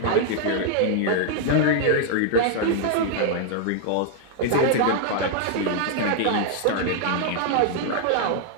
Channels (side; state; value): both; different; correlation 0.00